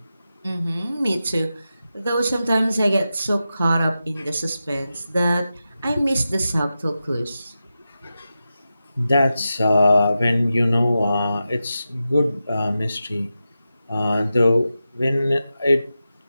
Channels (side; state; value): both; inverted; correlation -0.91